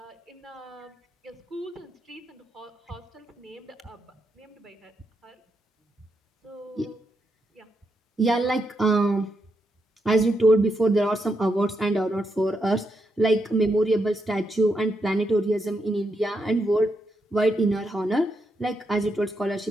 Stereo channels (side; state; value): both; normal; correlation 0.82